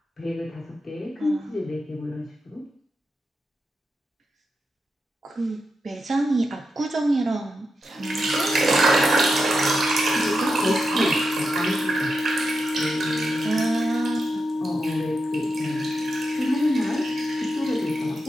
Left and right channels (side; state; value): both; normal; correlation 0.87